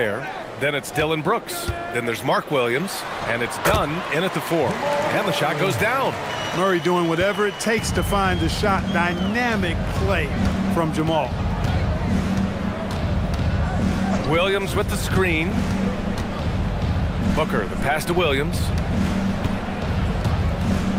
Then it's Dylan Brooks. Then there's Mark Williams. And it's Dunn in at the 4. And the shot goes down. Murray doing whatever it takes to find the shot. Dynamic play from Jamal. Williams with the screen. Booker, the pass to Williams.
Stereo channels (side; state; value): both; identical; correlation 1.00